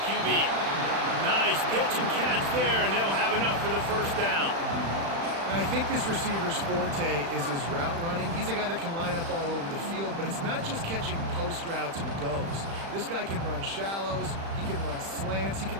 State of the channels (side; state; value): left; late; 36 ms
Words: QB. Nice pitch and catch there, and they'll have enough for the first down. And I think this receiver's forte is his route running. He's a guy that can line up all over the field, but it's not just catching post routes and goes. This guy can run shallows, he can run slants, he